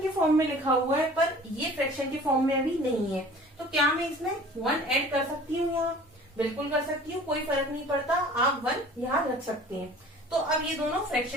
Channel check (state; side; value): normal; both; correlation 0.46